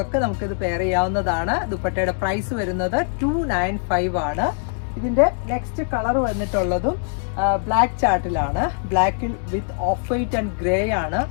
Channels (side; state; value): right; silent; 64 dB below the other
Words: ഒക്കെ നമുക്കിത് പെയർ ചെയ്യാവുന്നതാണ്. ദുപ്പട്ടയുടെ പ്രൈസ് വരുന്നത് 295 ആണ്. ഇതിന്റെ നെക്സ്റ്റ് കളർ വന്നിട്ടുള്ളതും ബ്ലാക്ക് ചാർട്ടിലാണ്. ബ്ലാക്കിൽ with off white and grey ആണ്